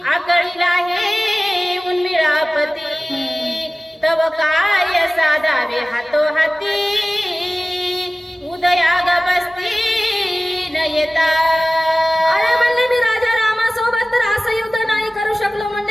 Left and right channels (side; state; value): both; normal; correlation 0.97